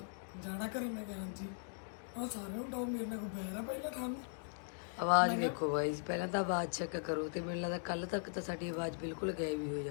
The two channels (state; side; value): silent; right; digital silence